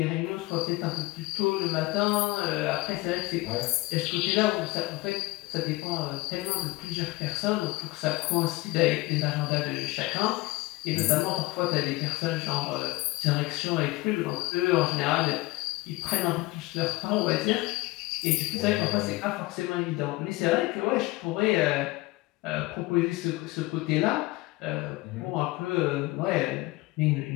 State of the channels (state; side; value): quieter; right; 20.6 dB